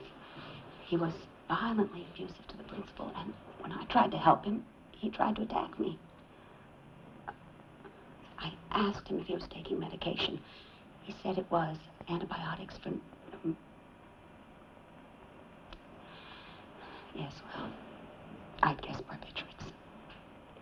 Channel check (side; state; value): both; identical; correlation 1.00